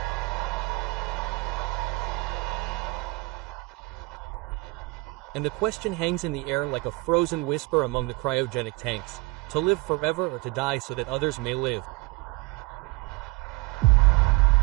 And the question hangs in the air like a frozen whisper among the cryogenic tanks: to live forever or to die so that others may live.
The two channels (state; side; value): quieter; left; 24.6 dB